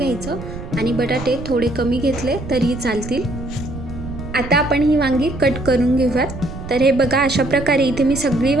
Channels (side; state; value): right; noise; rumble, 10 dB below the sound